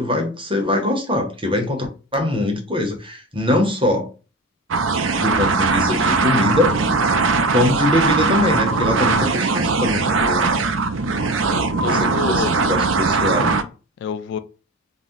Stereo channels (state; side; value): normal; both; correlation 0.27